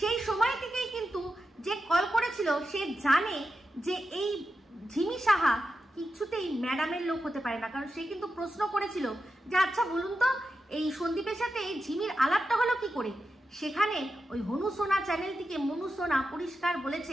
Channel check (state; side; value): normal; both; correlation 0.89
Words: সময় থেকেই কিন্তু যে কল করেছিল সে জানে যে এই ঝিমি সাহা কিছুতেই ম্যাডামের লোক হতে পারে না। কারণ সে কিন্তু প্রশ্ন করেছিল যে আচ্ছা বলুন তো, এই সন্দীপের সাথে এই ঝিমির আলাপটা হলো কি করে? সেখানে ওই হনু সোনা চ্যানেল থেকে মনু সোনা পরিষ্কার